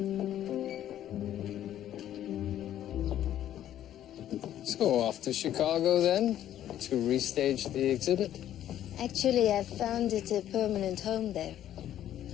So off to Chicago then, to restage the exhibit? Actually, I found it a permanent home there.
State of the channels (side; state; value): right; quieter; 11.6 dB